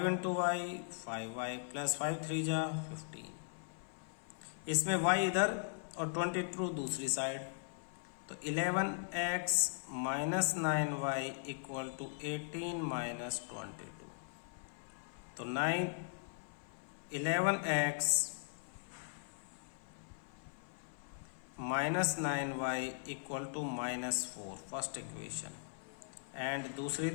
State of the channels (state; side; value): silent; right; 52 dB below the other